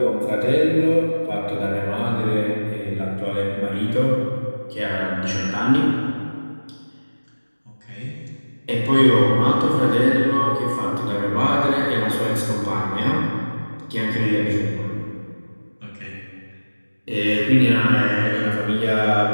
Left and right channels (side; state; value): both; inverted; correlation -1.00